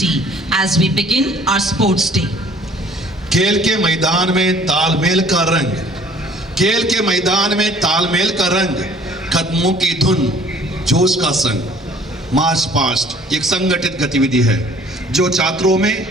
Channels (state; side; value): normal; both; correlation 0.55